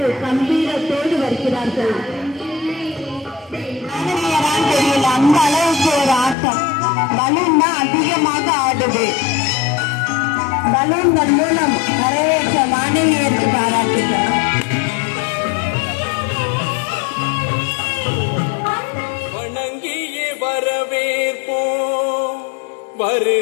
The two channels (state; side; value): drops out; right; at 6.4 s